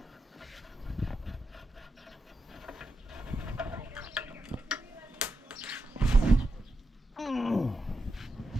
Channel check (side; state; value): both; normal; correlation 0.87